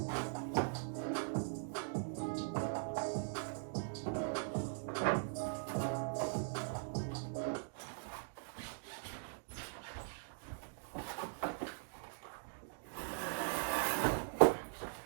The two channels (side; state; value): left; silent; digital silence